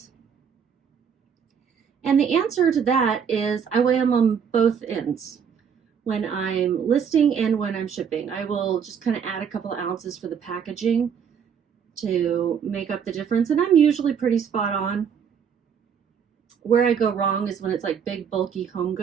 And the answer to that is I weigh them on both ends. When I'm listing and when I'm shipping, I will just kind of add a couple of ounces for the packaging to make up the difference, and I'm usually pretty spot on. Where I go wrong is when it's like big bulky home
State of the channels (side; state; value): left; quieter; 7.3 dB